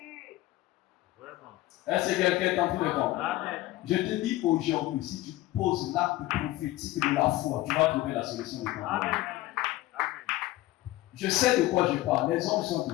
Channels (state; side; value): quieter; right; 17.2 dB